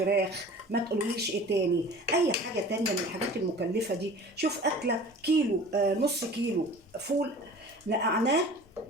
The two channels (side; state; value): both; normal; correlation 0.42